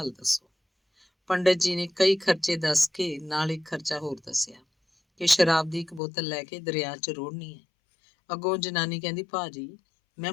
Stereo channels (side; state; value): right; drops out; at 6.0 s